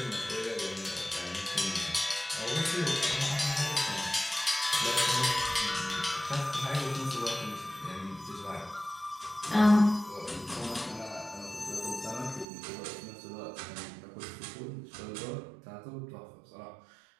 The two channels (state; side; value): drops out; left; at 12.5 s